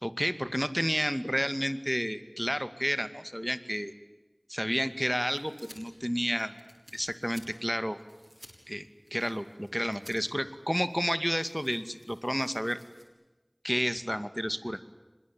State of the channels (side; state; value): both; identical; correlation 1.00